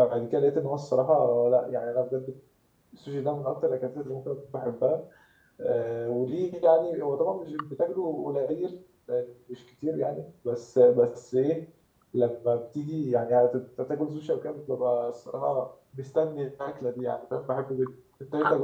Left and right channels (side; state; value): both; identical; correlation 1.00